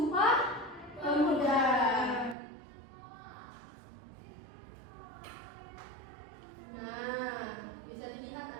Pemuda? Nah, bisa dilihat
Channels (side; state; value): left; drops out; at 2.4 s